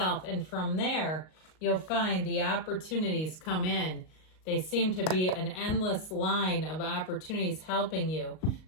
And from there, you'll find the opportunities come in. They seem to be an endless line of opportunities helping you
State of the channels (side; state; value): right; late; 38 ms